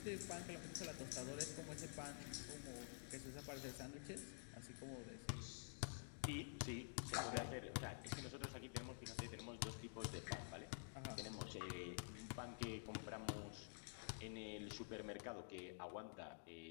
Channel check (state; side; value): silent; right; digital silence